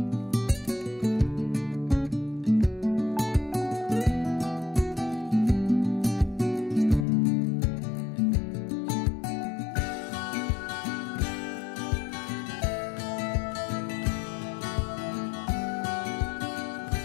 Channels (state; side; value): drops out; right; at 7.1 s